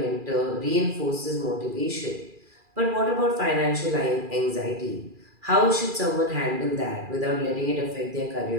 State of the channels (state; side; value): late; left; 2.4 ms